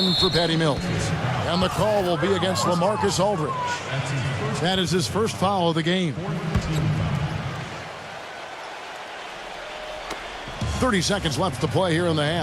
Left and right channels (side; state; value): both; identical; correlation 1.00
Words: for Patty Mills. And the call will be against LaMarcus Aldridge. That is his first foul of the game. 30 seconds left to play here in the